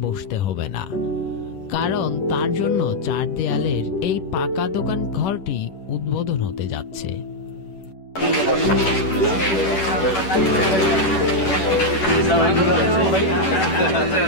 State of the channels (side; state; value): right; late; 10 ms